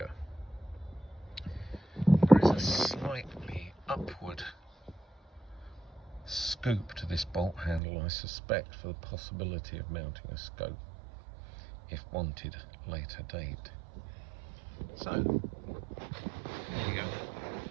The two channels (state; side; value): drops out; left; at 7.8 s